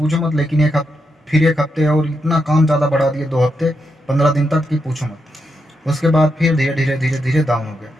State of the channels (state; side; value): normal; both; correlation 0.83